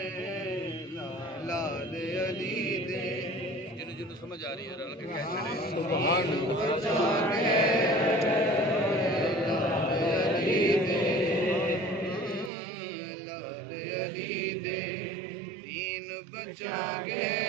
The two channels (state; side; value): drops out; left; at 12.5 s